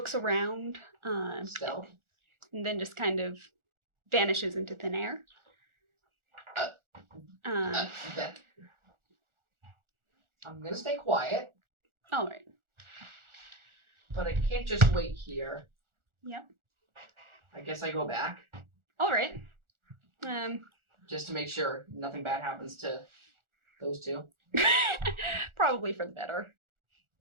around Stealth. and then just kind of vanishes into thin air. That. I'm gonna stay quiet, All right. but I can't just wait here. Yep. I guess I go back All right. just to make sure nothing bad happens to those two. Probably for the better.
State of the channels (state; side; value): late; left; 1.4 ms